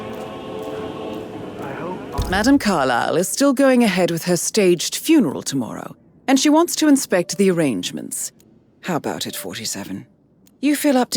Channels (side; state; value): both; identical; correlation 1.00